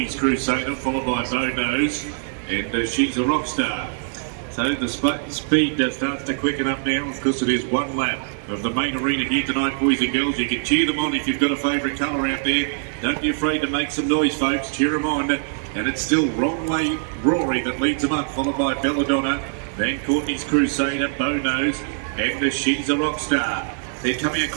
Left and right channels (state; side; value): silent; left; 64 dB below the other